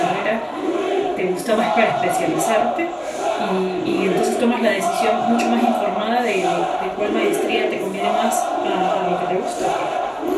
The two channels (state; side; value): identical; both; correlation 1.00